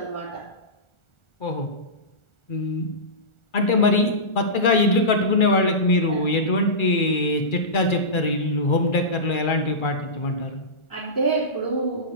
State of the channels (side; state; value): right; late; 1.4 ms